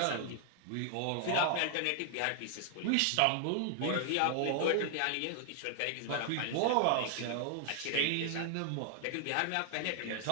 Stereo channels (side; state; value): both; different; correlation 0.00